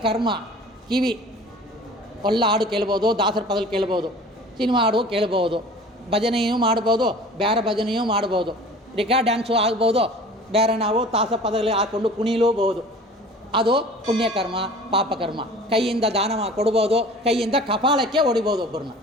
ಕರ್ಮ. ಕಿವಿ ಒಳ್ಳ ಹಾಡು ಕೇಳ್ಬೋದು, ದಾಸರ ಪದಗಳು ಕೇಳ್ಬೋದು, ಸಿನಿಮಾ ಹಾಡು ಕೇಳ್ಬೋದು, ಭಜನೆಯೂ ಮಾಡ್ಬೋದು, ಬೇರೆ ಭಜನೆಯೂ ಮಾಡ್ಬೋದು, ರಿಕಾರ್ಡ್ ಡ್ಯಾನ್ಸು ಆಗ್ಬೋದು, ಬೇರೆ ನಾವು ತಾಸ ಪದಗಳು ಹಾಕ್ಕೊಂಡು ಕುಣಿಲೂಬಹುದು. ಅದು ಪುಣ್ಯಕರ್ಮ, ಪಾಪಕರ್ಮ. ಕೈಯಿಂದ ದಾನ ಕೊಡ್ಬೋದು, ಕೈಯಿಂದ ಕಪಾಳಕ್ಕೆ ಹೊಡಿಬೋದು, ಒಬ್ಬರನ್ನ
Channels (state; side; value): normal; both; correlation 0.43